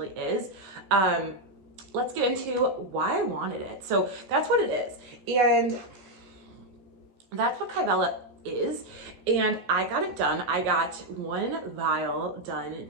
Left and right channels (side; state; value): left; late; 15 ms